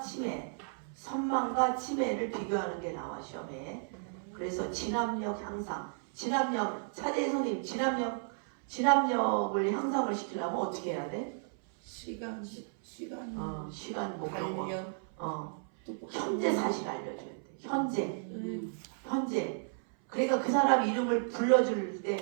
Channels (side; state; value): left; silent; 55 dB below the other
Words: 선망과 치매를 비교하는 게 나와 시험에. 그래서 진압력 향상. 차재희 선생님 진압력을 향상을 시키려면 어떻게 해야 돼? 시간 뭐 달력 현재 사실 알려줘야 돼. 현재. 그러니까 그 사람 이름을 불러줄